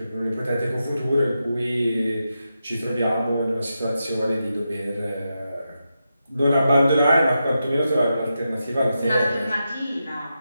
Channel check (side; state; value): both; inverted; correlation -0.88